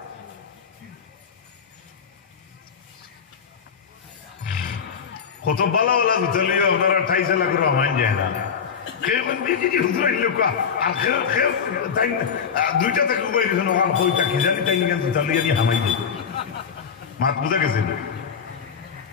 কত বালা বালা বুঝলিও আপনারা ঠাইছে লাগলো মান যায় না কেমন বিজি হুজুর লোক আর খেল তাই দুইটা থেকে উবাই দিছেন আর কইটা কি জানি তাই নিয়ে বুঝলিও নি হামাই দিই মাত বুঝা গেছে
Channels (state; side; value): quieter; right; 6.8 dB